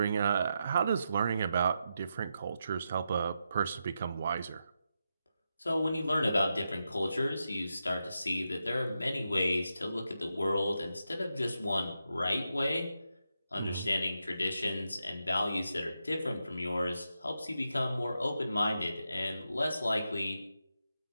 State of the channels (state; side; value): inverted; both; correlation -0.86